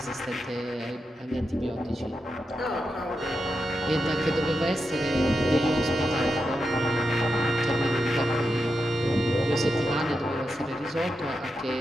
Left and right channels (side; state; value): both; normal; correlation 0.87